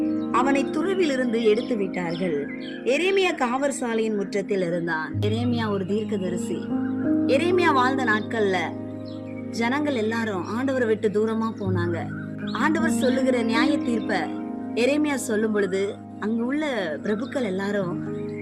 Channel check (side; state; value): both; identical; correlation 1.00